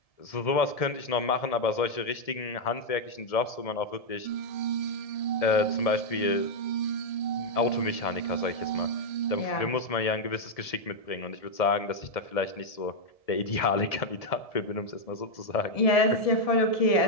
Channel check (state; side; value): late; right; 1.7 ms